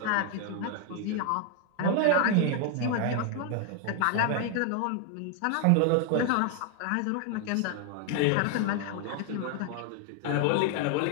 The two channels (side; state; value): both; different; correlation 0.01